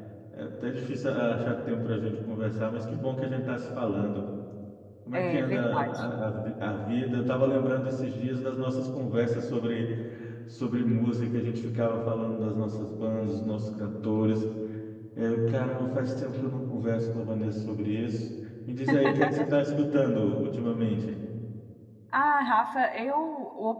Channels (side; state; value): both; identical; correlation 1.00